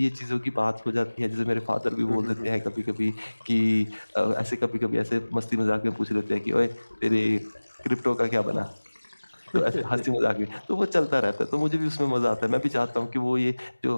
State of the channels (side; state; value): both; inverted; correlation -1.00